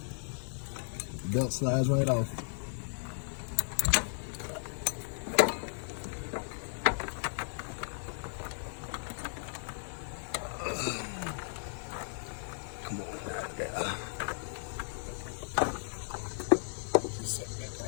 The belt slides right off. Come on, out there. Set that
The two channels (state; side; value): silent; right; digital silence